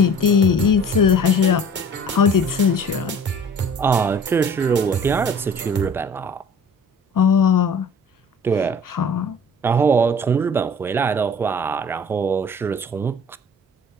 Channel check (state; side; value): normal; both; correlation 0.46